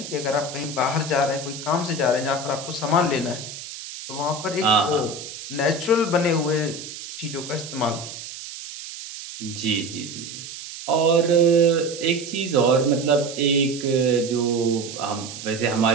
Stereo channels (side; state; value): right; noise; hiss, 11 dB below the sound